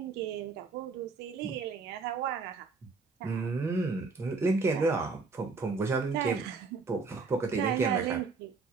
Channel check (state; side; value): quieter; left; 4.5 dB